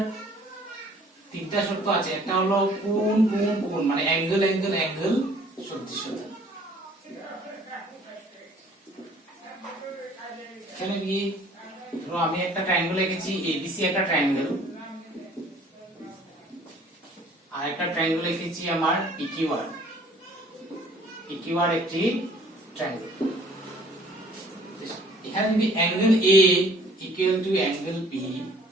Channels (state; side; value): normal; both; correlation 0.55